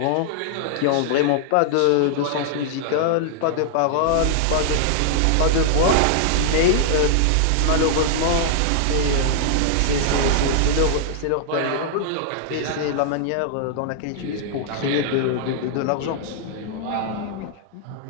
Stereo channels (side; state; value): both; different; correlation -0.01